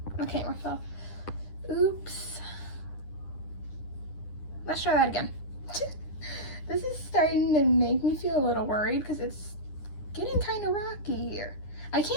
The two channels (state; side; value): late; right; 9.9 ms